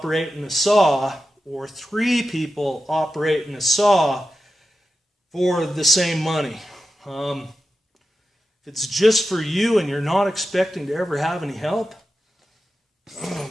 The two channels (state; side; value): normal; both; correlation 0.91